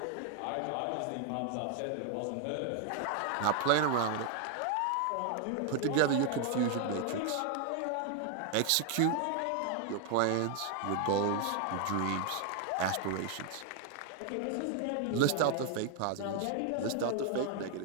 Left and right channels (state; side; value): different; both; correlation 0.00